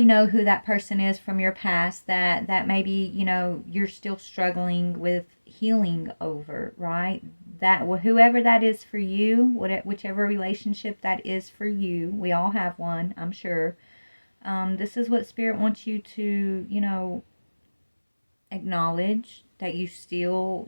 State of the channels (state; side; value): inverted; both; correlation -1.00